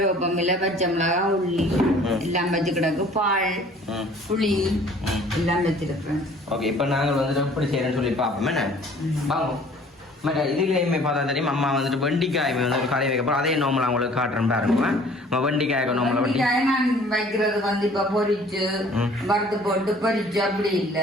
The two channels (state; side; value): normal; both; correlation 0.53